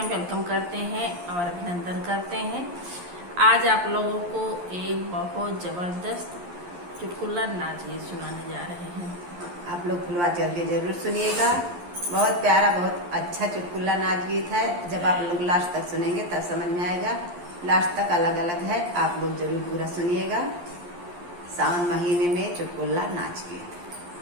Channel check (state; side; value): late; left; 11 ms